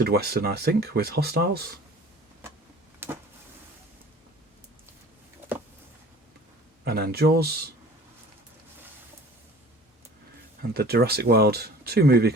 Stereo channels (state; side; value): normal; both; correlation 0.46